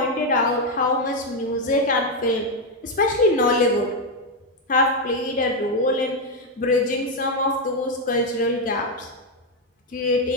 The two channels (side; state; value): both; normal; correlation 0.04